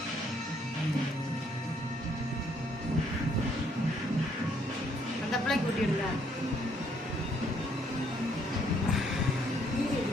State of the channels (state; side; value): normal; both; correlation 0.68